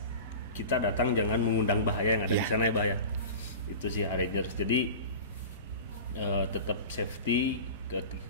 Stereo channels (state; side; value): inverted; both; correlation -0.33